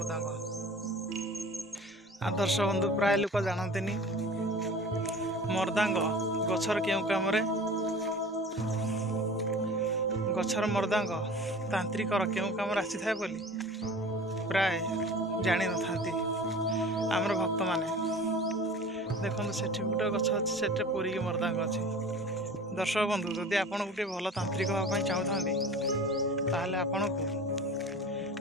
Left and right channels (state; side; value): normal; both; correlation 0.40